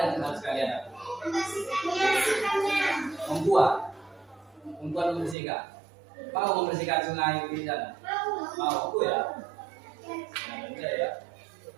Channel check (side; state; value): left; drops out; at 5.4 s